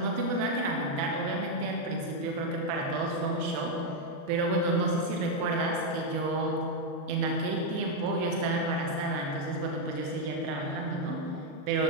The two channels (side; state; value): left; late; 34 ms